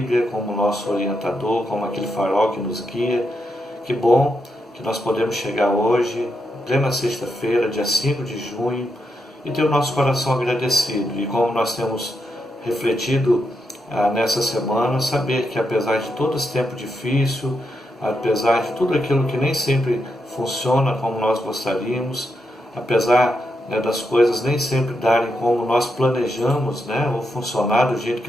como nosso orientador, como aquele farol que nos guia. Que bom que nós podemos chegar hoje, plena sexta-feira, dia 5 de junho, e ter o nosso coração agradecido. E como nós temos refletido nessa semana, saber que apesar de todo esse tempo difícil, apesar de tudo aquilo que nem sempre funciona como nós gostaríamos, apesar das coisas nem sempre darem como nós planejamos, ou funcionar do jeito que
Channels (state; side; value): normal; both; correlation 0.83